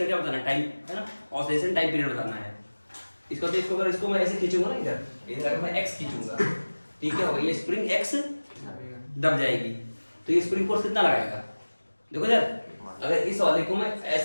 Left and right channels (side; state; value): both; inverted; correlation -1.00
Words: क्या बताना है, टाइम है ना, ऑसिलेशन टाइम पीरियड बताना है। इसको तो इसको अगर इसको मैं ऐसे खींचूंगा ना, इधर अगर मैं x खींचूंगा, ठीक है, होगा ये स्प्रिंग x दब जाएगी, तो ये स्प्रिंग फोर्स कितना लगाएगा, देखो यार, अगर इस वाले को मैं